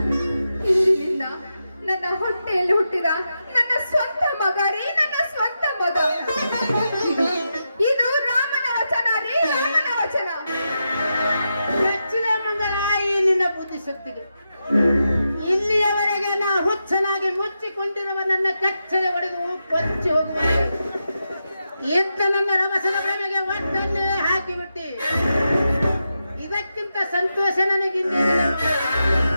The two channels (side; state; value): both; inverted; correlation -0.87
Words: ಇಂದಿನಿಂದ ನನ್ನ ಹೊಟ್ಟೆಯಲ್ಲಿ ಹುಟ್ಟಿದ ನನ್ನ ಸ್ವಂತ ಮಗ ರೀ, ನನ್ನ ಸ್ವಂತ ಮಗ. ಇದು ರಾಮನ ವಚನ ರೀ, ರಾಮನ ವಚನ. ಹೆಚ್ಚಿನ ಮಂಗಳ ಈ ನಿನ್ನ ಬುದ್ಧಿಶಕ್ತಿಗೆ. ಇಲ್ಲಿಯವರೆಗೆ ನಾ ಹುಚ್ಚನಾಗಿ ಮುಚ್ಚಿಕೊಂಡಿರುವ ನನ್ನ ಕಚ್ಚೆ ಒಡೆದು ಕೊಚ್ಚಿ ಹೋಗುವ ಇದ್ದ ನನ್ನ ರಭಸದ ಭ್ರಮೆಗೆ ಒಟ್ಟನ್ನೇ ಹಾಕಿಬಿಟ್ಟಿ. ಇದಕ್ಕಿಂತ ಸಂತೋಷ ನನಗಿನ್ನೇನಿದೆ.